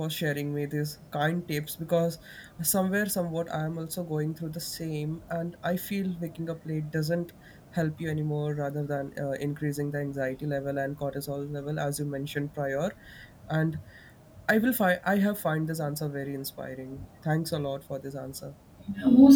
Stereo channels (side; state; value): both; identical; correlation 1.00